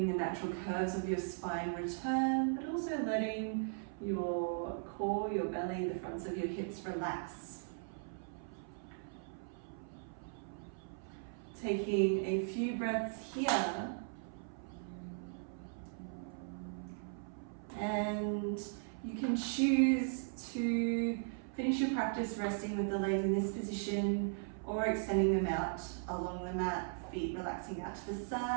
the natural curves of your spine return, but also letting your core, your belly, the fronts of your hips relax. Taking a few breaths here. And you can choose to finish your practice resting with the legs in this position or extending them out along the mat, feet relaxing out to the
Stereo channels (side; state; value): left; silent; 52 dB below the other